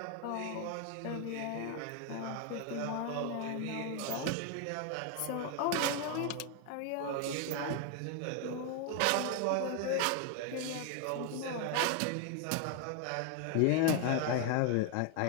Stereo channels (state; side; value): different; both; correlation 0.01